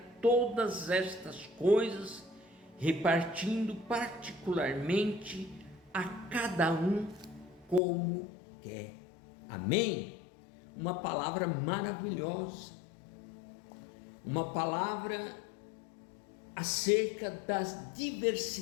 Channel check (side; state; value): right; drops out; at 7.8 s